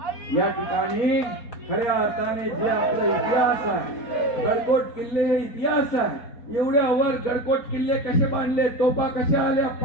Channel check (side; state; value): right; late; 4.3 ms